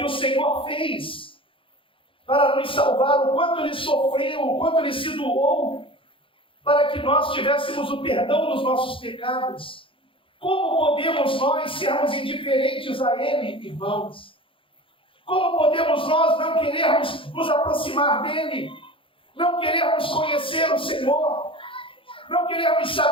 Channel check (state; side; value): late; right; 0.25 ms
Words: o Senhor fez para nos salvar, o quanto Ele sofreu, o quanto Ele se doou, para que nós tivéssemos o perdão dos nossos pecados, como podemos nós sermos indiferentes a Ele, irmãos? Como podemos nós não querermos nos aproximar dEle, não querermos conhecer o Senhor, não querermos